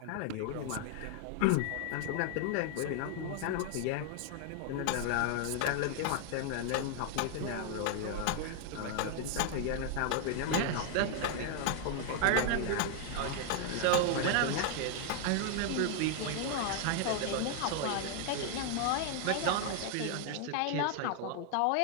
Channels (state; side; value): different; both; correlation 0.00